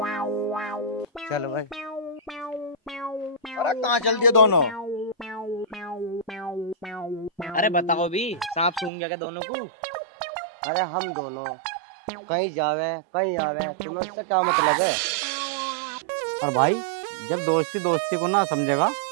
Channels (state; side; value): drops out; left; at 8.9 s